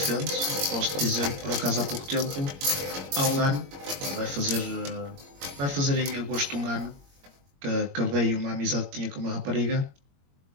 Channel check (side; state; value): left; late; 21 ms